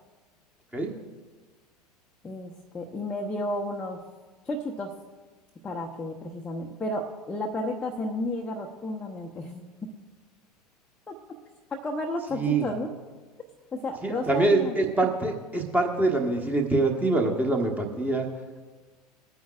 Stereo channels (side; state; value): both; normal; correlation 0.59